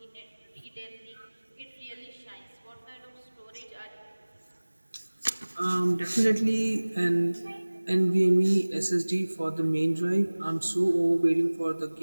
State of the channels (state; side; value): inverted; both; correlation -1.00